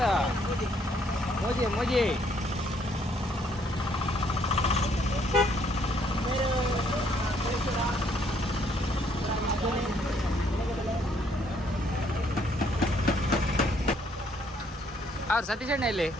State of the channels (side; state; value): both; normal; correlation 0.67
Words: ಮೋಜಿ ಅವ್ರು ಸತೀಶ್ ಅಣ್ಣ ಇಲ್ಲಿ